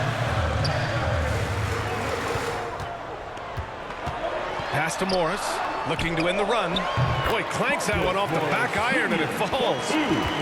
Pass to Morris, looking to end the run. Boy, clanks that one off the back iron and it falls.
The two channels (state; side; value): identical; both; correlation 1.00